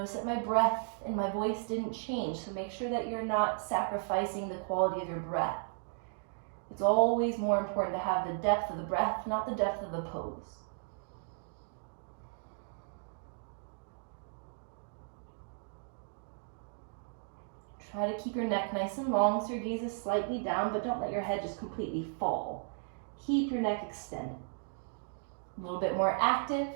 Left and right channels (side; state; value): left; silent; digital silence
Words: that my breath and my voice didn't change. So make sure that you're not sacrificing the quality of your breath. It's always more important to have the depth of the breath, not the depth of the pose. Try to keep your neck nice and long so your gaze is slightly down, but don't let your head just completely fall. Keep your neck extended. A little bit more active.